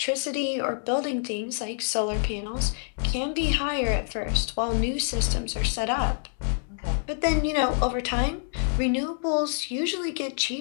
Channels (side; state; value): right; silent; 60 dB below the other